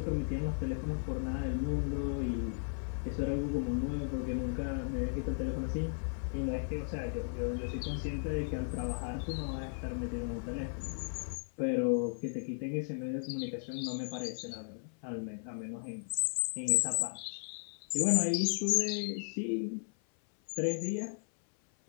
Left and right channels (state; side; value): silent; right; 54 dB below the other